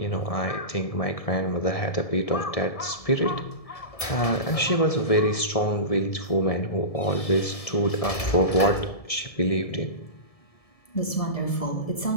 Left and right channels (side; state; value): right; late; 1.7 ms